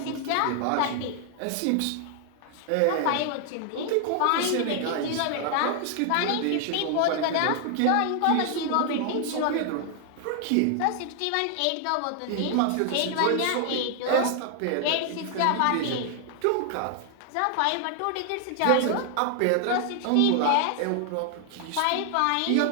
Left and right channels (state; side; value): different; both; correlation 0.00